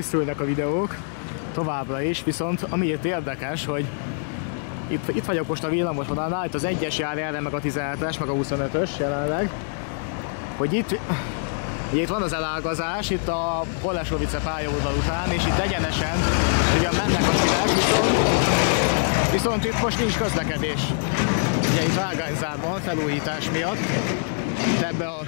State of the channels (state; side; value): silent; right; digital silence